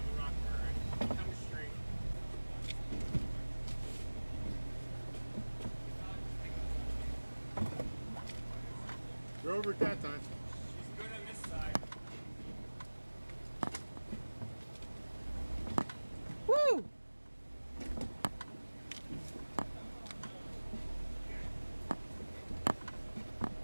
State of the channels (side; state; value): both; inverted; correlation -1.00